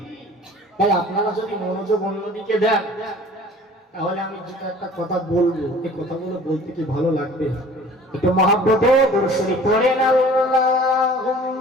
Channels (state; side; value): normal; both; correlation 0.48